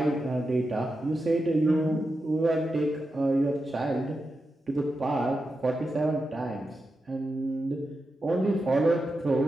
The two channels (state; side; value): normal; both; correlation 0.89